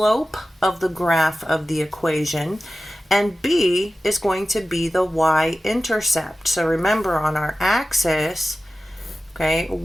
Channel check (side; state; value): both; normal; correlation 0.95